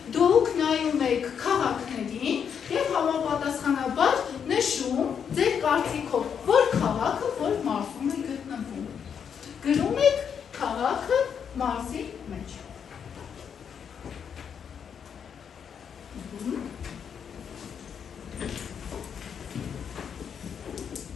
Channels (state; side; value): quieter; right; 7.4 dB